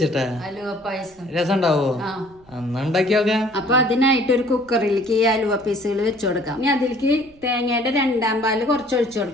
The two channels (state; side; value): noise; right; rumble, 28 dB below the sound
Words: അലുവ പായസം രസം ഉണ്ടാവോ? അന്ന് ഉണ്ടാക്കി നോക്കാം. അപ്പൊ അതിനായിട്ട് ഒരു കുക്കറിലേക്ക് ഈ അലുവ പീസുകൾ വെച്ചു കൊടുക്കാം. ഇനി അതിലേക്ക് തേങ്ങയുടെ 2-ാം പാല് കുറച്ച് ഒഴിച്ചു